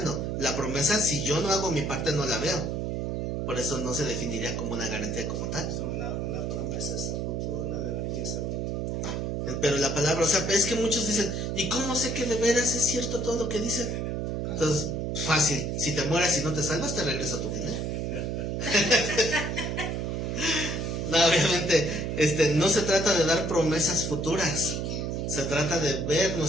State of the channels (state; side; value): noise; right; hum, 2 dB below the sound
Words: La promesa, si yo no hago mi parte, no la veo. Por eso no se definiría como una garantía como tal. una promesa es a futuro, una garantía es ahorita. Pero la palabra, o sea, es que muchos dicen, ¿y cómo sé que de veras es cierto todo lo que dicen? Entonces, fácil, si te mueras y no te salvas, te regreso a tu dinero. No, obviamente, no se trata de dar promesas futuras, se trata de ver